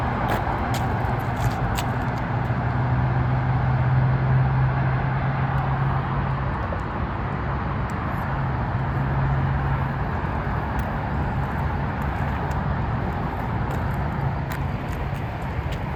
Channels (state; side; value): identical; both; correlation 1.00